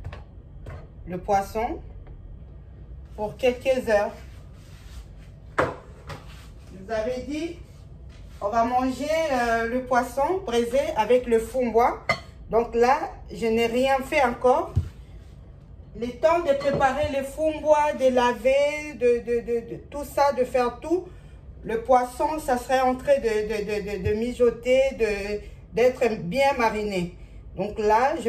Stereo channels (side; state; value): both; identical; correlation 1.00